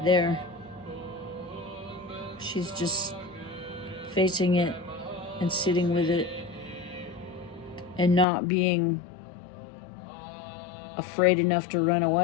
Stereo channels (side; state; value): right; drops out; at 8.2 s